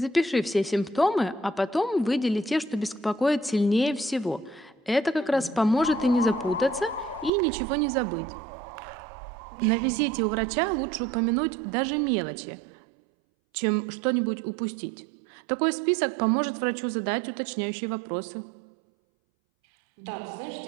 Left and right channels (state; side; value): drops out; left; at 7.3 s